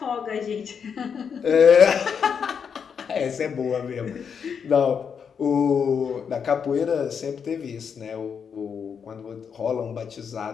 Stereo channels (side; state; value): right; quieter; 6.8 dB